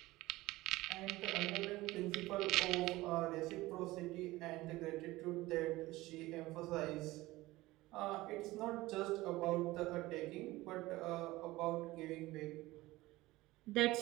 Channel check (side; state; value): left; quieter; 18.8 dB